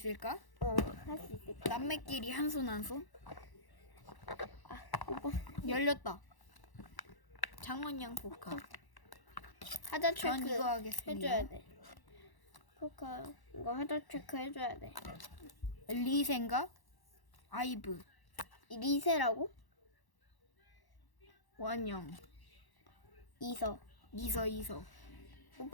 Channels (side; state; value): right; late; 1.0 ms